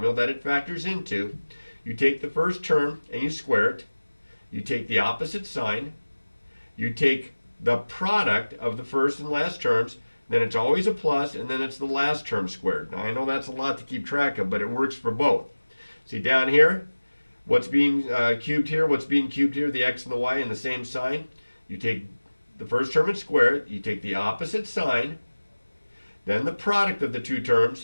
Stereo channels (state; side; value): inverted; both; correlation -1.00